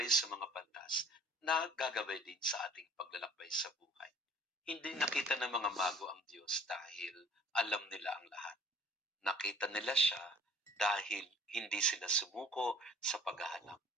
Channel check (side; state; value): both; normal; correlation 0.52